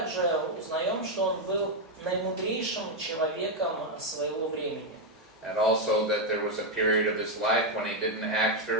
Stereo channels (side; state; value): both; normal; correlation 0.02